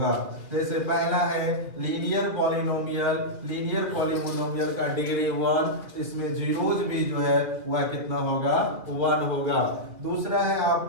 जैसे पहला है लीनियर पॉलिनोमियल, लीनियर पॉलिनोमियल का डिग्री 1, इसमें जीरोज भी जो है वह कितना होगा? 1 होगा। दूसरा है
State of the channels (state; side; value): late; left; 2.6 ms